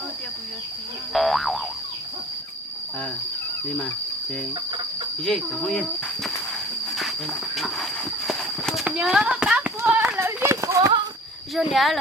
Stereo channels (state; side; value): normal; both; correlation 0.44